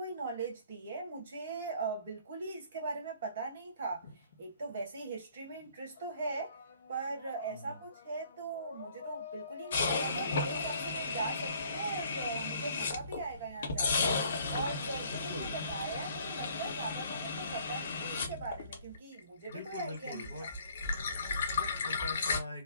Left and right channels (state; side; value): inverted; both; correlation -0.59